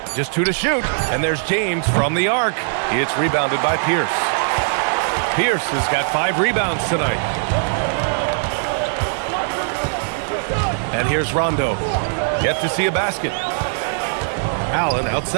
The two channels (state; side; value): silent; left; 66 dB below the other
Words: Just 2 to shoot, and there's James from the arc. It's rebounded by Pierce. Pierce has got 5 rebounds tonight. And here's Rondo. Yet to see a basket. Allen